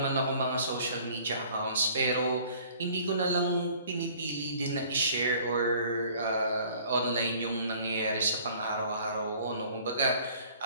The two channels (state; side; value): inverted; both; correlation -0.53